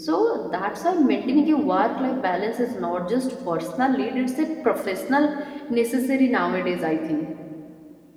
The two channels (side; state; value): both; identical; correlation 1.00